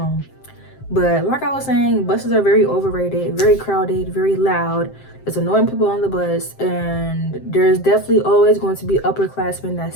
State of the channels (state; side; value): late; right; 7.6 ms